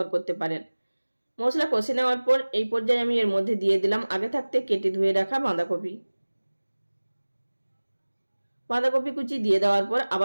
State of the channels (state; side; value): inverted; both; correlation -1.00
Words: করতে পারেন। মশলা কষে নেওয়ার পর এই পর্যায়ে আমি এর মধ্যে দিয়ে দিলাম আগে থাকতে কেটে ধুয়ে রাখা বাঁধাকপি কুচি দিয়ে দেওয়ার পর